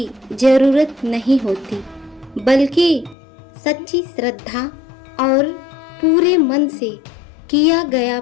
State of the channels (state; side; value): drops out; right; at 3.2 s